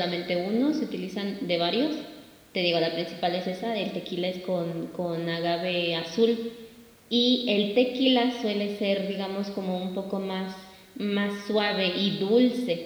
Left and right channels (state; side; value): identical; both; correlation 1.00